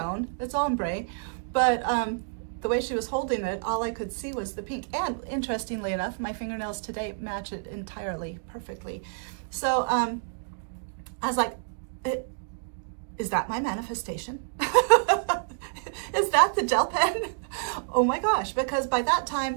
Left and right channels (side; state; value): left; silent; digital silence